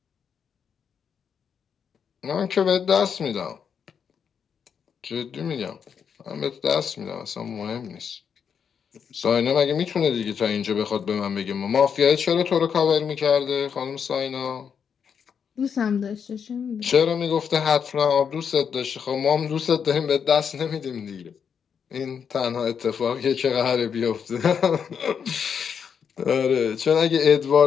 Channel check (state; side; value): quieter; right; 7.1 dB